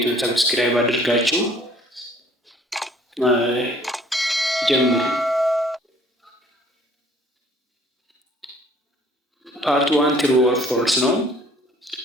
ሰብስክራይብ አድርጋችሁ ጀምሩ። ፓርት 1 ትሩ ኦር ፎልስ ነው።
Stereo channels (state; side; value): normal; both; correlation 0.56